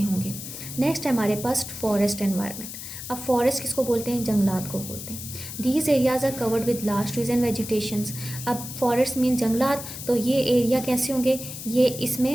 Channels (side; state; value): left; noise; hiss, 10 dB below the sound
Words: होंगे। नेक्स्ट है हमारे पास फॉरेस्ट एनवायरनमेंट। अब फॉरेस्ट किसको बोलते हैं, जंगलात को बोलते हैं। These areas are covered with large trees and vegetations. अब फॉरेस्ट मीन जंगलात, तो ये एरिया कैसे होंगे, ये